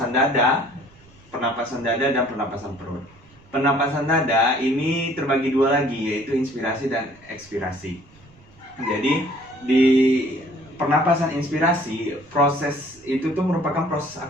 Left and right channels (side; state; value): right; noise; rumble, 27 dB below the sound